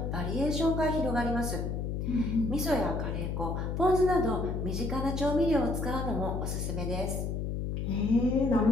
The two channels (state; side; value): noise; left; hum, 2 dB below the sound